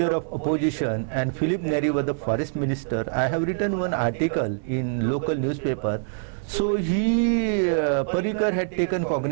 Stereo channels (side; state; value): left; silent; digital silence